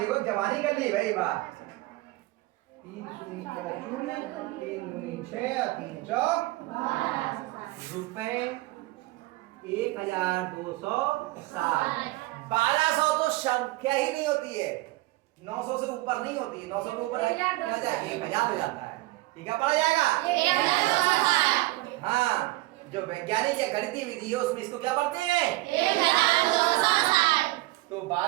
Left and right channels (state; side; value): quieter; left; 19.8 dB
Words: जवानी कर ली भाई बात। 3 शून्य 3 दूनी 6 और 3 चौक रुपए 1260। 1200 तो संख्या ही नहीं होती है, 900 से ऊपर नहीं होती है। 900 के ऊपर 1000 हो जाता है। ठीक है, पढ़ा जाएगा। हाँ, जो वैज्ञानिक या गणितीय विधि है उसमें इसको क्या पढ़ते हैं? 1260। तो